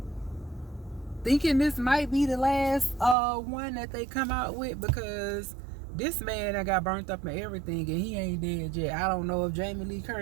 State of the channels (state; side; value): drops out; left; at 3.2 s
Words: Thinking this might be the last one that they come out with, because this man that got burnt up and everything, and he ain't dead yet. I don't know if Jamie Lee